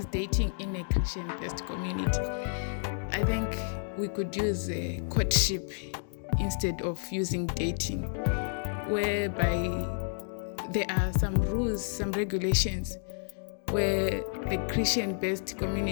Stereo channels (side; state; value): right; silent; digital silence